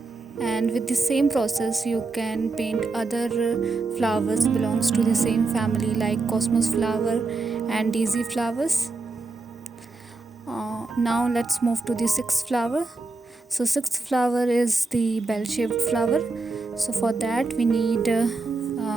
And with the same process you can paint other flowers belongs to the same family, like cosmos flower and daisy flowers. Now let's move to the sixth flower. So sixth flower is the bell-shaped flower. So for that we need a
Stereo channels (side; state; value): left; quieter; 3.6 dB